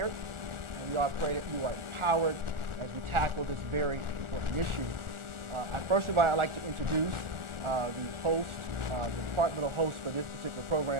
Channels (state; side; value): late; left; 1.4 ms